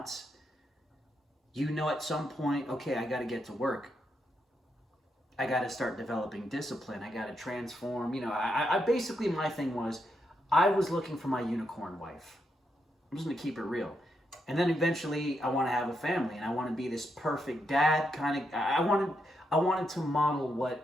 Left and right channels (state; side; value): normal; both; correlation 0.81